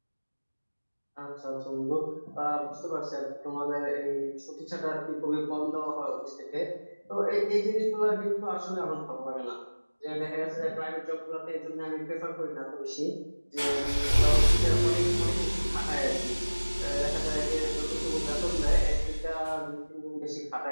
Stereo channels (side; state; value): both; inverted; correlation -1.00